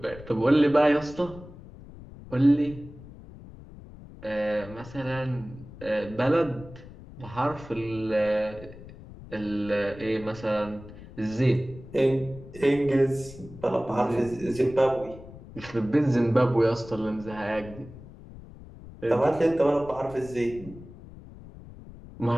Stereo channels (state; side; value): noise; left; rumble, 17 dB below the sound